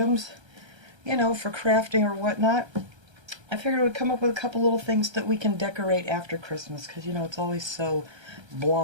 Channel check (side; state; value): left; late; 1.3 ms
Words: you know, for crafting or whatnot, I figured I would come up with a couple little things that we can decorate after Christmas, because you know it's always so